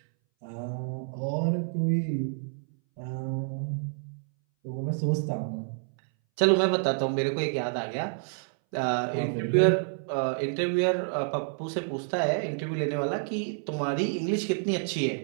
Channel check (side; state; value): left; silent; 59 dB below the other